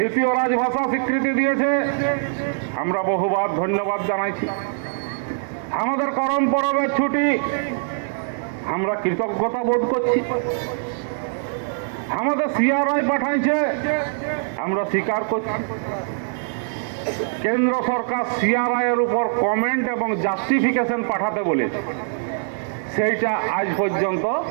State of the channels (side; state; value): left; silent; digital silence